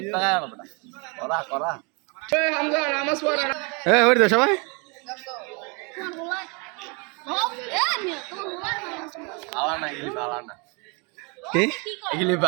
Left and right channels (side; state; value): left; quieter; 31.9 dB